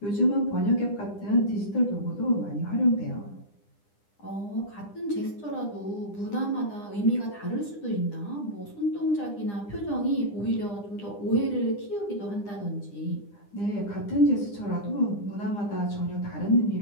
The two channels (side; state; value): right; late; 9.9 ms